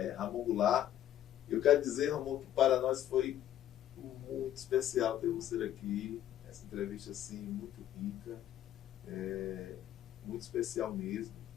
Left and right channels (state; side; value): quieter; right; 11.8 dB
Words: Ramon Goulart. Eu quero dizer, Ramon, que para nós foi muito especial ter você aqui. Essa entrevista assim, muito rica, muito especial mesmo,